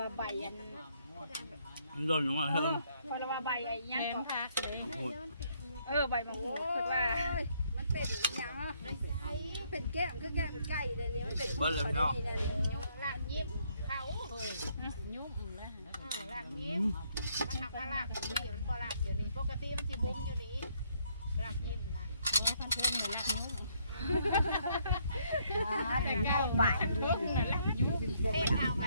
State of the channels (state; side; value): inverted; both; correlation -0.70